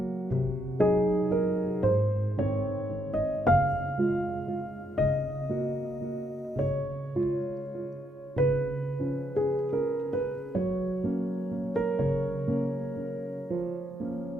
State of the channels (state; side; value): normal; both; correlation 0.78